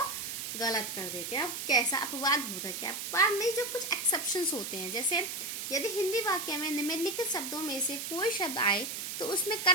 गलत कर देते हैं। अब कैसा अपवाद होता है? क्या अपवाद में जो कुछ एक्सेप्शंस होते हैं, जैसे यदि हिंदी वाक्य में निम्नलिखित शब्दों में से कोई शब्द आए तो उसमें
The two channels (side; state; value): right; noise; hiss, 5 dB below the sound